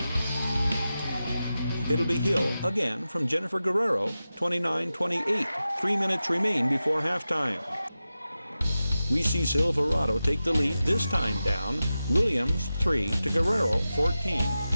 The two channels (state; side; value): inverted; both; correlation -0.93